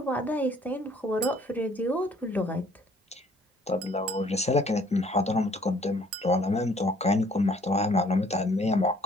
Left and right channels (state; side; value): normal; both; correlation 0.59